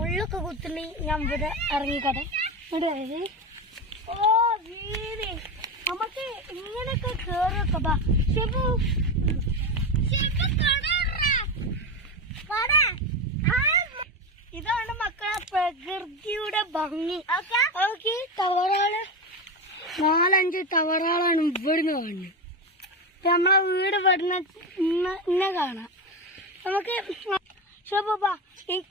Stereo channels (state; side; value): normal; both; correlation 0.17